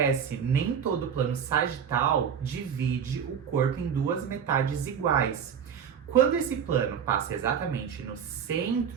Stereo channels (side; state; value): left; quieter; 7.7 dB